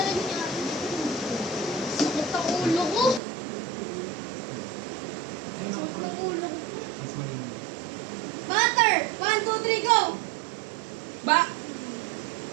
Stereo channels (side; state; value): left; drops out; at 3.2 s